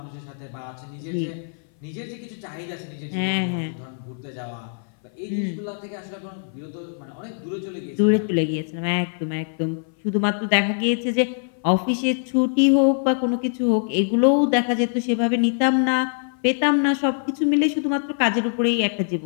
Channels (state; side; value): silent; right; 59 dB below the other